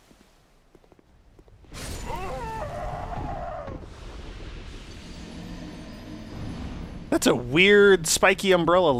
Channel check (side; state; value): both; identical; correlation 1.00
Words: That's a weird spiky umbrella